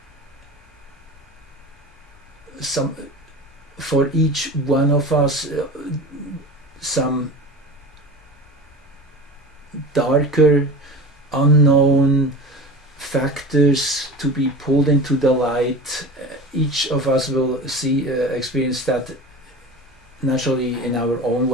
for each one of us some darker, unknown factors to be pulled into the light. Each of us will experience that naturally in our own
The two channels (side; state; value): both; normal; correlation 0.33